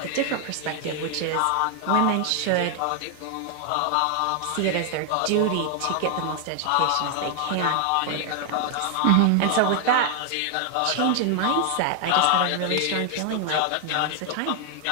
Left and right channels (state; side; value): different; both; correlation 0.00